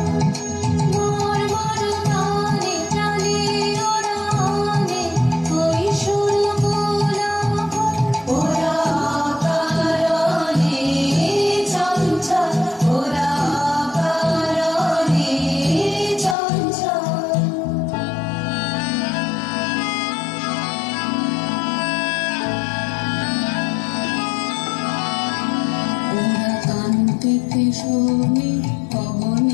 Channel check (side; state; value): right; drops out; at 16.4 s